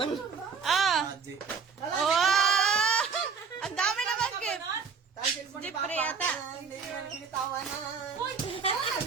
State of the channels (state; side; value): quieter; left; 5.7 dB